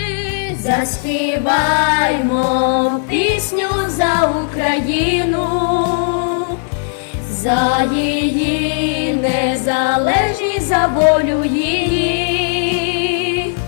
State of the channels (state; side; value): silent; right; digital silence